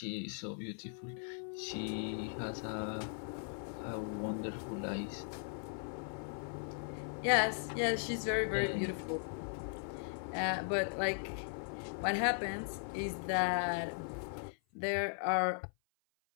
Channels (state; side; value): silent; right; 52 dB below the other